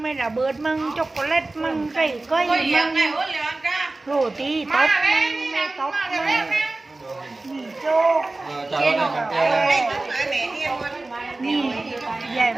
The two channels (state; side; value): quieter; left; 3.1 dB